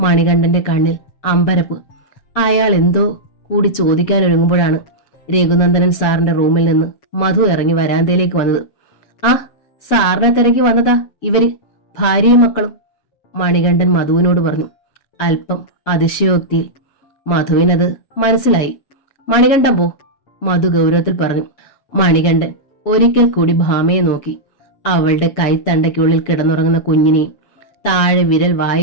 കണ്ണിൽ അമ്പരപ്പ്. അയാൾ എന്തോ കൂടി ചോദിക്കാനൊരുങ്ങുമ്പോഴാണ് രഘുനന്ദനൻ സാറിന്റെ റൂമിൽ നിന്ന് മധു ഇറങ്ങി വരാന്തയിലേക്ക് വന്നത്. ആ, സാറിനെ തിരക്കി വന്നതാ ഇവര്, ഭാര്യയും മക്കളും, മണികണ്ഠൻ മധുവിനോട് പറഞ്ഞു, അല്പം അതിശയോക്തിയിൽ. മധുവിനത് മനസ്സിലായി. മണികണ്ഠൻ പോ, മധു ഗൗരവത്തിൽ പറഞ്ഞു. മണികണ്ഠൻ ഒരിക്കൽ കൂടി ഭാമയെ നോക്കി. അവളുടെ കൈത്തണ്ടയ്ക്കുള്ളിൽ കിടന്നുറങ്ങുന്ന കുഞ്ഞിനെയും താഴെ വിരൽ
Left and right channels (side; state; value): right; late; 7.3 ms